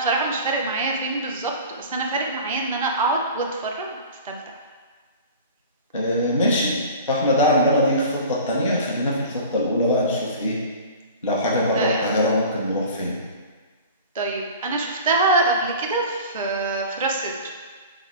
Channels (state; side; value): inverted; both; correlation -0.38